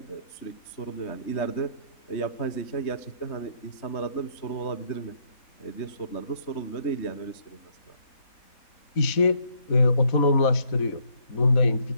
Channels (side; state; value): right; late; 4.0 ms